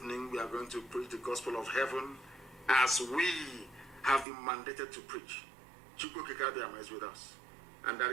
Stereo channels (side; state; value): left; drops out; at 4.2 s